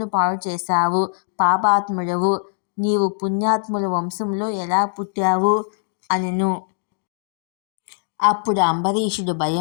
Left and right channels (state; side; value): silent; right; 60 dB below the other